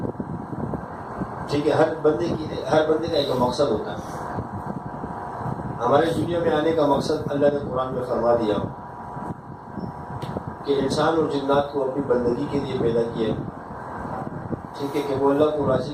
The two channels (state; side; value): identical; both; correlation 1.00